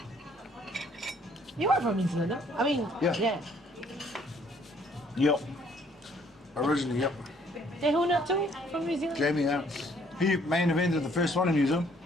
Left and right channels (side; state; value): both; normal; correlation 0.62